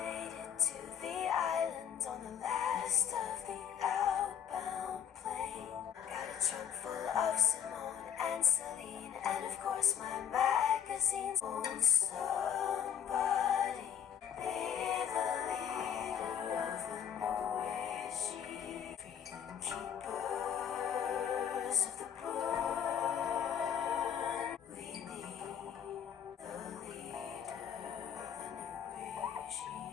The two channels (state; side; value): quieter; right; 8.7 dB